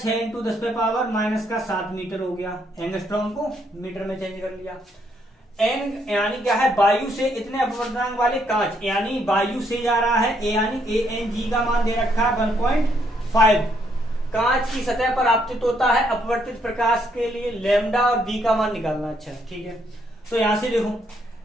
× 10⁻⁻7 मीटर हो गया, एंगस्ट्रॉम को मीटर में चेंज कर लिया। एन यानी क्या है, वायु से इतने अपवर्तनांक वाले कांच, यानी वायु से जा रहा है, ए यानी ANG का मान दे रखा है 1.5, कांच की सतह पर आपतित होता है अपवर्तित प्रकाश के लिए लैम्डा और बी का मान निकालना। अच्छा ठीक है, तो यहां से देखो,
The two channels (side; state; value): both; normal; correlation 0.72